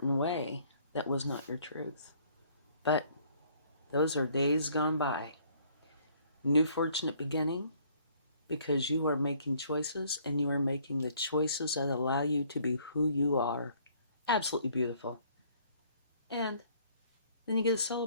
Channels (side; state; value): both; inverted; correlation -0.61